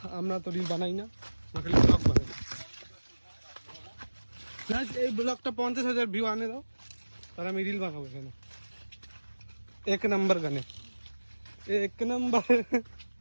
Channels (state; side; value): inverted; both; correlation -1.00